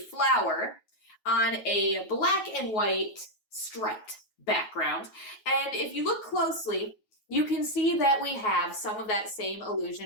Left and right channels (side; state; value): right; late; 9.3 ms